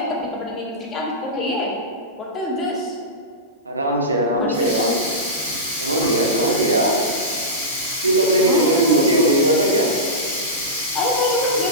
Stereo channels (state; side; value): normal; both; correlation -0.16